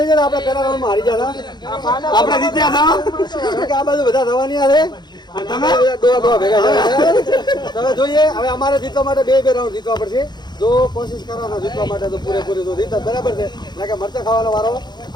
જાય. આપણે પહેલા રાઉન્ડમાં હારી ગયા હતા, આપણે જીત્યા હતા કે આ બાજુ બધા થવાની છે. તમે દોવા ભેગા છે. તમે જોઈએ હવે અમારે જીતવા માટે બે રાઉન્ડ જીતવા પડશે. જો કોશિશ કરવાના જીતવા માટે તો પૂરેપૂરી તો જીત બરાબર છે. ના કે મરચા ખાવાનો વારો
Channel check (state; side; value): late; right; 0.21 ms